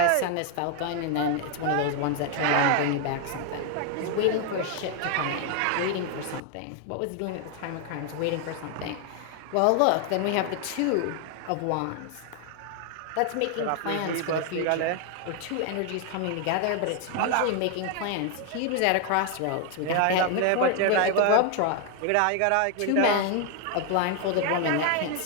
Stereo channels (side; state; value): both; different; correlation 0.01